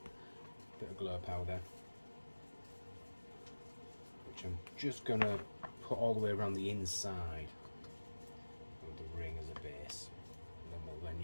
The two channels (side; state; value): both; inverted; correlation -1.00